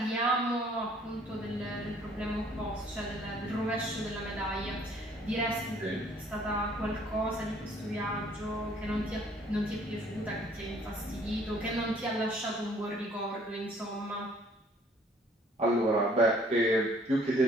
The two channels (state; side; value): normal; both; correlation 0.59